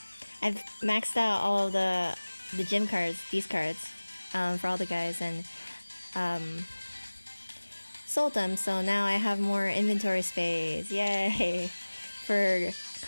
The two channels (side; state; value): both; inverted; correlation -1.00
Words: I've maxed out all of the gym cards, these cards, for all the guys, and sold them, so now I have more inventory space. Yay! For